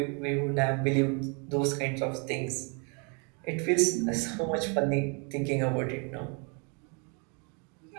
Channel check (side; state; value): left; quieter; 35.2 dB